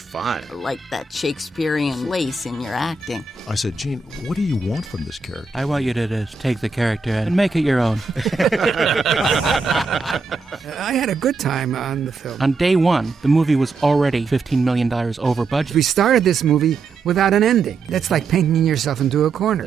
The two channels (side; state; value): left; quieter; 4.2 dB